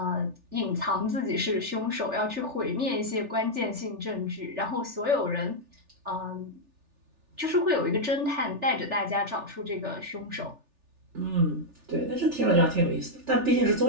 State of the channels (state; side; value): late; left; 3.4 ms